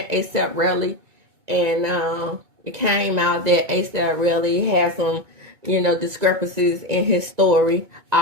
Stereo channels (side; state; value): left; late; 2.2 ms